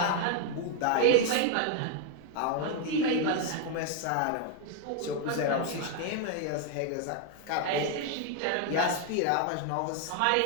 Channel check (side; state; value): both; different; correlation 0.00